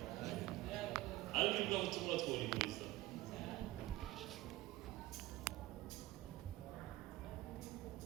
ariko ibyo butumwa twahuriza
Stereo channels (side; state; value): left; quieter; 17.3 dB